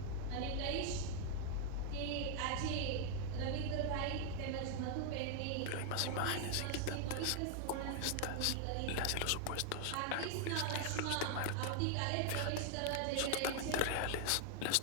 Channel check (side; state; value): both; different; correlation 0.00